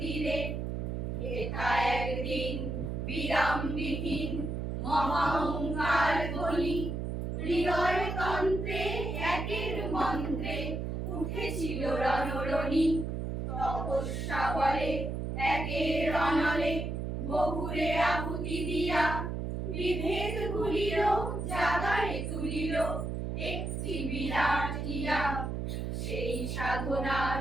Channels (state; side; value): noise; right; hum, 3 dB below the sound